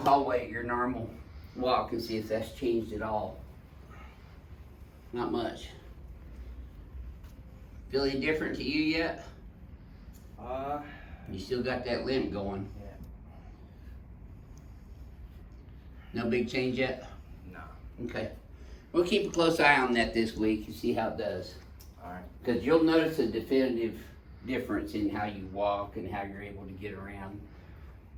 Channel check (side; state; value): both; identical; correlation 1.00